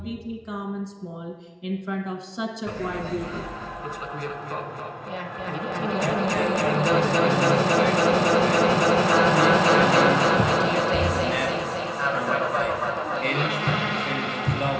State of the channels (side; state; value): both; identical; correlation 1.00